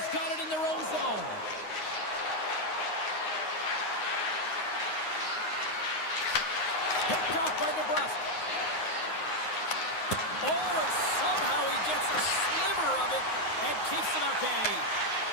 got it in their own zone. Picked off by DeBrusque. Oh, and somehow he gets a sliver of it and keeps it at bay.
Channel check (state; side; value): late; right; 9.6 ms